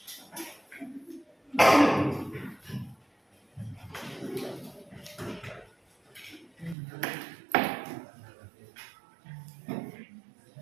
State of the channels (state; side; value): drops out; left; at 6.8 s